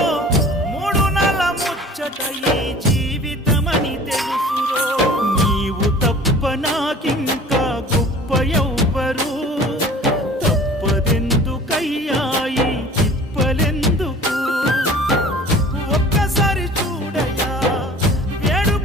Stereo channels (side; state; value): both; normal; correlation 0.45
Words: మూడు నెల ముచ్చట ఈ జీవితమని తెలుసురో నీవు తప్ప నాకింకా గొప్ప ఎవ్వరు తప్పదెందుకయ్యాయి తిప్పలెందుకు ఒక్కసారి చూడయా